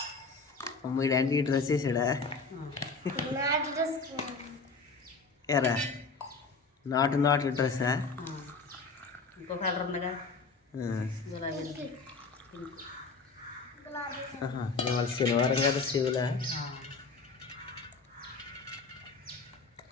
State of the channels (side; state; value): right; quieter; 4.3 dB